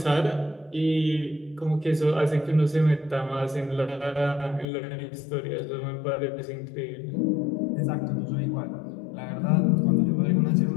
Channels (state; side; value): drops out; right; at 4.7 s